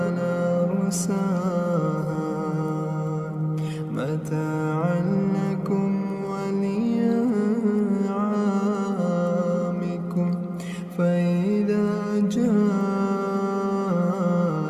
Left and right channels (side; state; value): both; identical; correlation 1.00